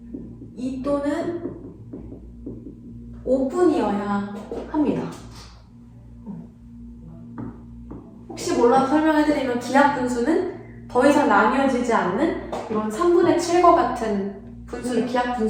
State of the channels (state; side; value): identical; both; correlation 1.00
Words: 2 또는 5분이어야 합니다. 혹시 몰라서 설명해드리면 기하분수는 더 이상 나뉘어지지 않는 이런 3분의 7과 같은 분수를